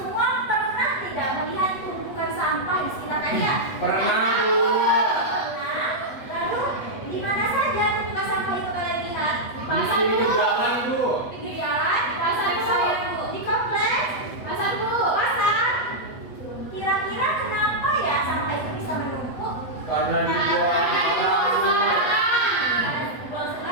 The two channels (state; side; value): late; right; 8.1 ms